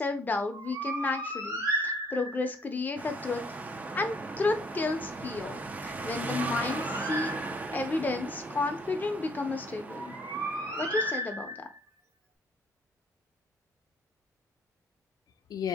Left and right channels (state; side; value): normal; both; correlation 0.62